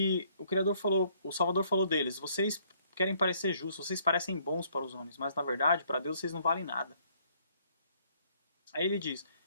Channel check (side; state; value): both; inverted; correlation -0.64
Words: o Salvador falou deles, vocês querem parecer justos, vocês parecem bons para os homens, mas na verdade, para Deus, vocês não valem nada. Aí ele diz,